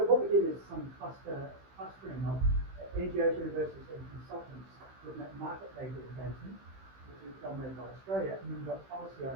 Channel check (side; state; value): left; late; 15 ms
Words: what we did is some clustering of NGOs, universities and consultants looking at market data engagement, which is dominated by Australia, and then you've got policy